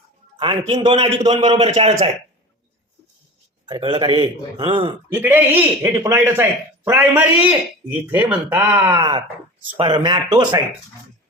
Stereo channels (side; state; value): both; normal; correlation 0.34